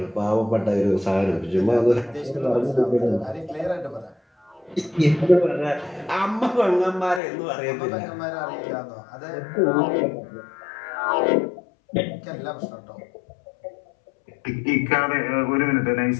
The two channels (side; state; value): right; drops out; at 7.2 s